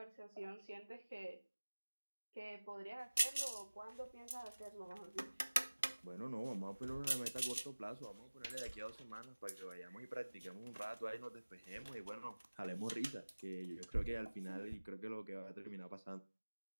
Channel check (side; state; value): both; inverted; correlation -1.00